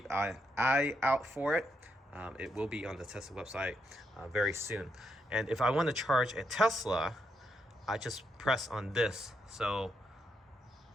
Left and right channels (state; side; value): normal; both; correlation 0.80